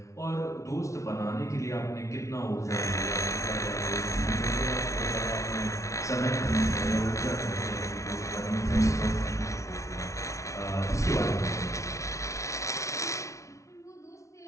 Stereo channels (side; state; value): right; late; 0.14 ms